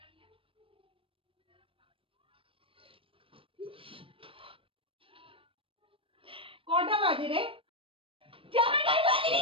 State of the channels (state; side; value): late; left; 0.26 ms